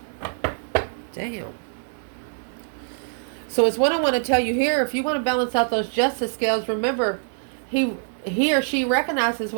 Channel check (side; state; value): left; silent; 62 dB below the other